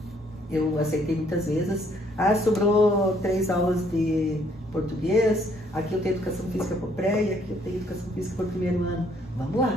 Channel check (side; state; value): both; normal; correlation 0.66